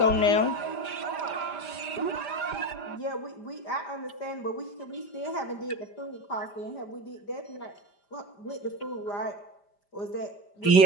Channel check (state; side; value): late; right; 5.0 ms